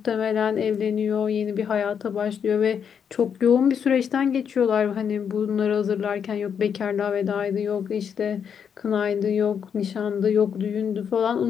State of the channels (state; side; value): quieter; right; 7.5 dB